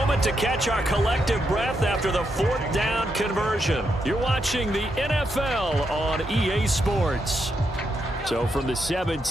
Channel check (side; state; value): both; normal; correlation 0.81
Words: to catch our collective breath after the 4th down conversion. You're watching the NFL on EA Sports. So from the